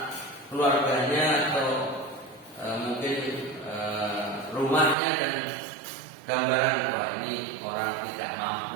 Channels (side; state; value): left; drops out; at 5.0 s